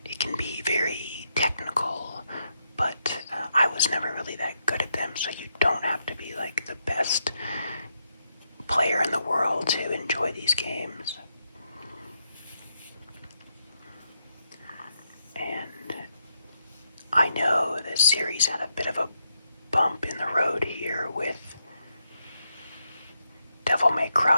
it can be very technical, but I was never really that good at them, so you don't have to be like the best player in the world to enjoy these games. And I know this series had a bit of a bump in the road here with Devil May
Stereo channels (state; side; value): inverted; both; correlation -0.81